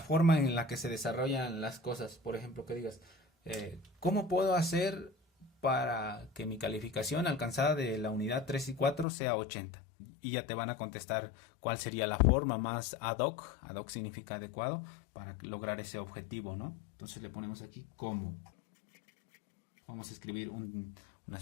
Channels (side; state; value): right; drops out; at 9.1 s